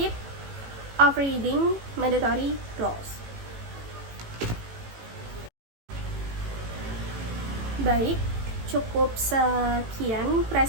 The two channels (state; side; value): late; left; 18 ms